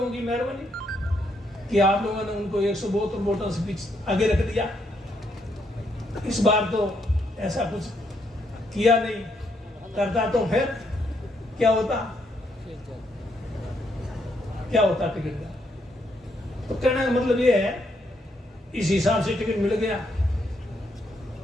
की मेहरबानी कि आप लोगों ने उनको 172 वोटों से पीछे आगे रख दिया। इस बार तो ऐसा कुछ किया नहीं, करता तो फिर क्या होता टिकट का। तो कहने का मतलब ये है, इस हिसाब से टिकट मिल गया।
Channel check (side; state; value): both; normal; correlation 0.76